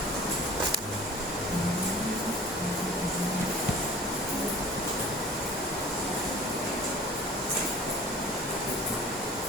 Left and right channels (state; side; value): normal; both; correlation 0.44